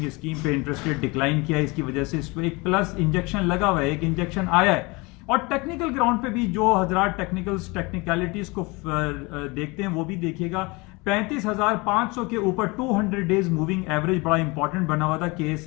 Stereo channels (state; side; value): quieter; right; 25.8 dB